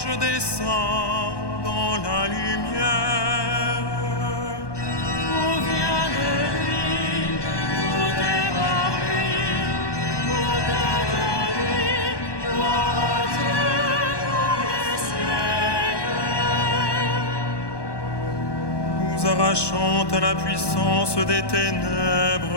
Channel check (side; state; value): right; late; 1.1 ms